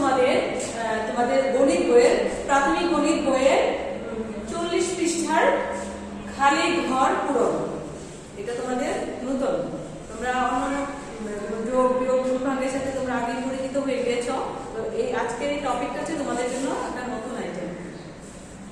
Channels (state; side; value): identical; both; correlation 1.00